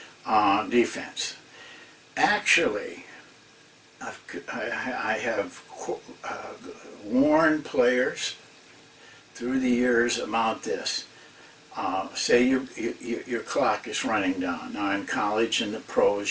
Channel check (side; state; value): both; identical; correlation 1.00